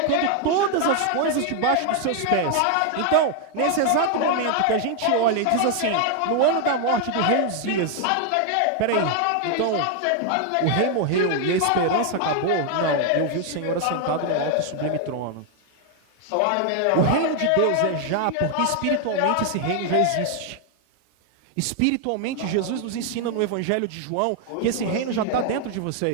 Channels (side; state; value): both; different; correlation 0.00